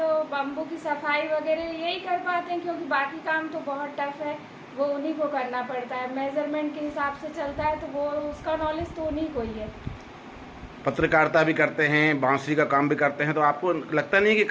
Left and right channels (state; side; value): identical; both; correlation 1.00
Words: बम्बू की सफाई वगैरह यही कर पाते हैं, क्योंकि बाकी काम तो बहुत टफ है, वो उन्हीं को करना पड़ता है। मेजरमेंट के हिसाब से चलता है तो वो उसका नॉलेज तो उन्हीं को ही है। पत्रकारिता भी करते हैं, बांसुरी का काम भी करते हैं, तो आपको लगता नहीं कि